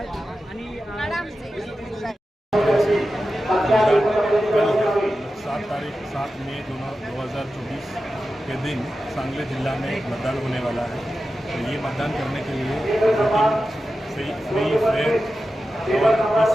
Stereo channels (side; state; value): both; normal; correlation 0.92